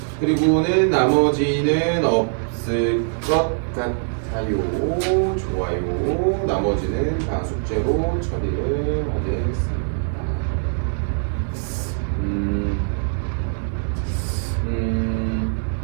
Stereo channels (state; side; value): silent; left; digital silence